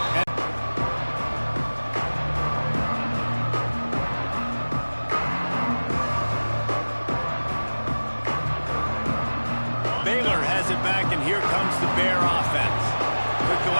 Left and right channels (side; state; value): both; inverted; correlation -1.00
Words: Baylor has it back, and here comes the Bear offense. Took the